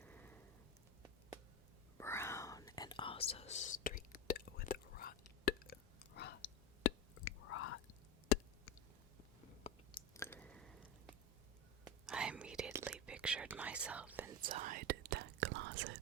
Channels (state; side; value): normal; both; correlation 0.19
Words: Brown and also streaked with rot. I immediately pictured myself inside that closet.